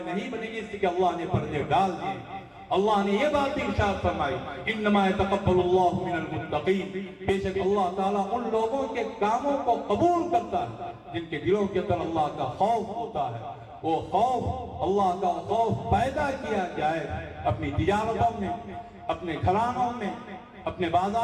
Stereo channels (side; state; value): both; identical; correlation 1.00